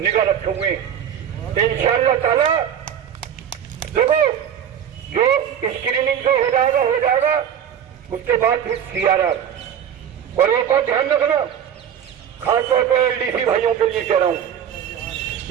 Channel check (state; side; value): quieter; left; 8.9 dB